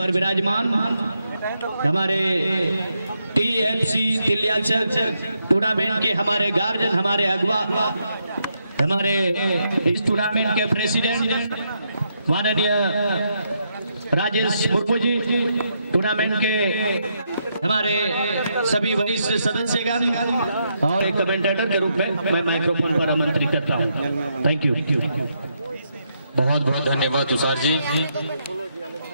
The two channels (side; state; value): both; inverted; correlation -0.79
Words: विराजमान हमारे टीएफसी तिलियाचक टूर्नामेंट के हमारे गार्जियन, हमारे अगवा, हमारे इस टूर्नामेंट के प्रेसिडेंट माननीय राजेश मुर्मू जी, टूर्नामेंट के हमारे सभी वरिष्ठ सदस्यगण और एक कमेंटेटर के रूप में मैं माइक्रोफोन पर आमंत्रित करता हूं। Thank you. बहुत बहुत धन्यवाद तुषार जी।